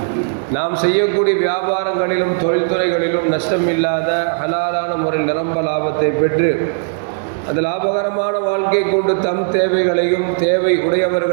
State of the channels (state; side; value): silent; left; 68 dB below the other